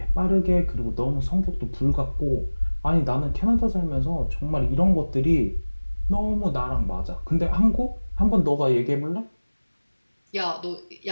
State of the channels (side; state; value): both; inverted; correlation -1.00